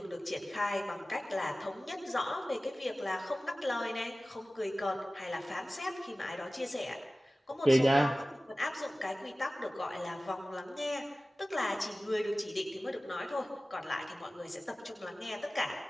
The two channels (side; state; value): both; normal; correlation 0.97